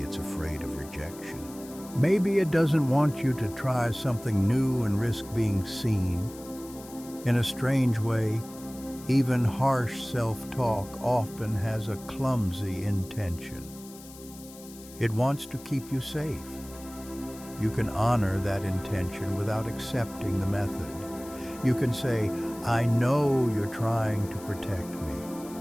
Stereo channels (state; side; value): noise; left; hiss, 19 dB below the sound